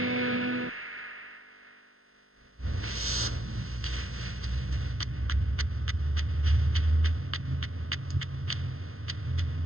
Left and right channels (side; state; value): left; late; 0.62 ms